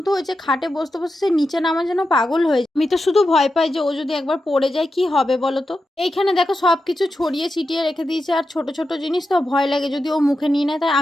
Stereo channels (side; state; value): both; normal; correlation 0.89